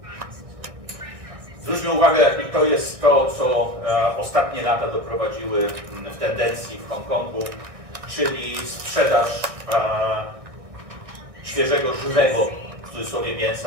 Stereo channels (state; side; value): late; left; 1.6 ms